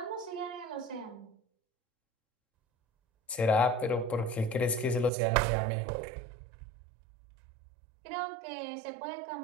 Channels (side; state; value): left; drops out; at 5.1 s